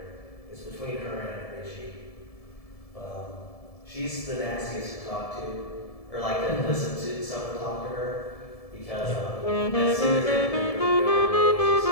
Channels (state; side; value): late; right; 1.7 ms